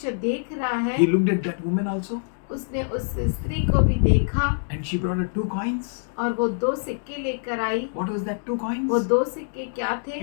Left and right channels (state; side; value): silent; right; 62 dB below the other